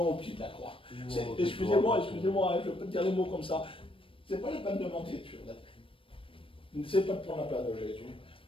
au pied de la croix. Excusez-moi, je peux te dire les mots comme ça. C'est pas la peine de mentir sur la tête. C'est pas de prendre la place de Jésus.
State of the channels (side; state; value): right; late; 0.26 ms